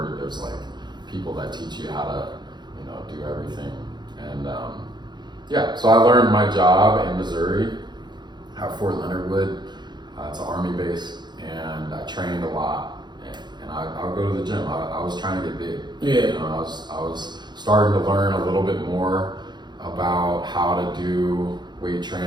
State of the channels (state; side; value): late; left; 0.21 ms